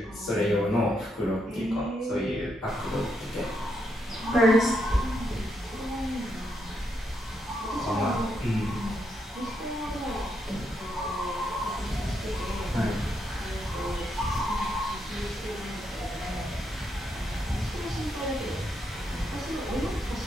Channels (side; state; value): both; normal; correlation 0.79